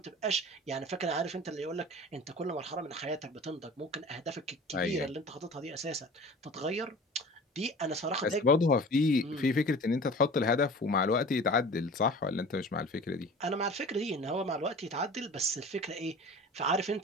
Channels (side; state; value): both; normal; correlation 0.41